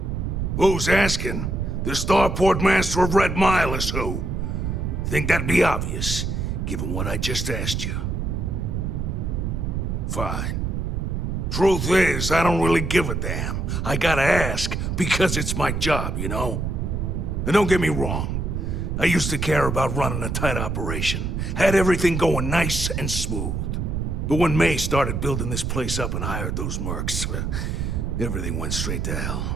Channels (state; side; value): noise; right; rumble, 1 dB below the sound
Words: Who's asking? The starport master of Red Mile is who? Think that'd be obvious, given what I just asked you. Fine. Truth is, I don't really give a damn. I gotta ask, because it's my job, you know? And don't get me wrong. I used to care about running a tight operation. Had everything going nice and smooth. But when May started building this place up and hired those mercs, everything went straight to hell.